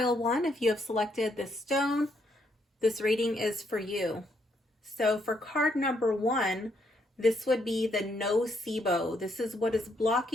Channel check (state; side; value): normal; both; correlation 0.74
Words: 1. If you have selected this stone, this reading is for you. So for card number 1, this would be the nocebo. This is what is